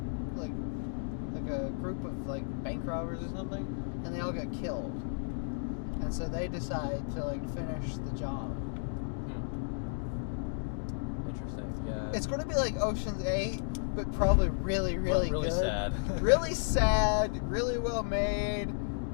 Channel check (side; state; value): right; silent; digital silence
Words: a group of like bank robbers or something, and they all got killed. And so they decide to like finish the job. Interesting. Yeah. It's going to be like Ocean's 8, but probably really really good. sad. Really sad. Really well made.